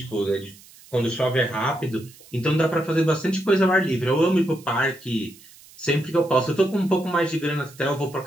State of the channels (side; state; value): right; noise; hiss, 23 dB below the sound